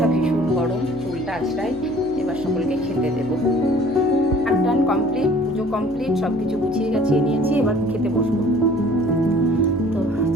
ভীষণ গরম, চুলটা আছড়াই। এবার সকলকে খেতে দেবো। টান কমপ্লিট, পুজো কমপ্লিট, সব কিছু গুছিয়ে গাছিয়ে নিয়েছি। এবার খেতে বসবো। তো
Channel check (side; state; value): left; noise; hum, 20 dB below the sound